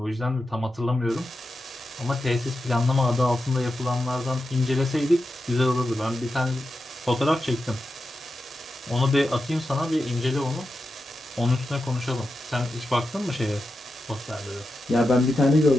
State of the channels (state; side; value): normal; both; correlation 0.90